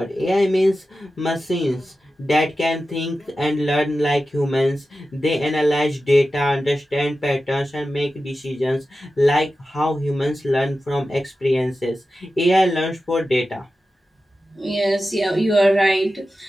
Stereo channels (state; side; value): normal; both; correlation 0.93